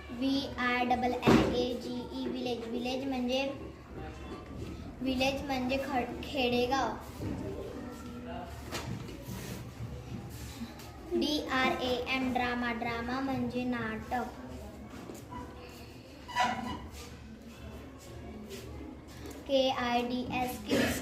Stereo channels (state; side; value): identical; both; correlation 1.00